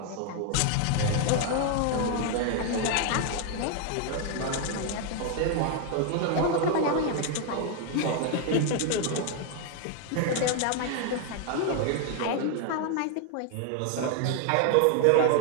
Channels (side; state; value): both; different; correlation 0.00